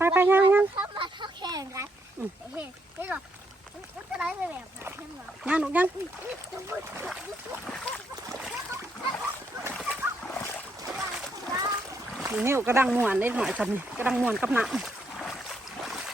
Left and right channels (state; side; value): normal; both; correlation 0.76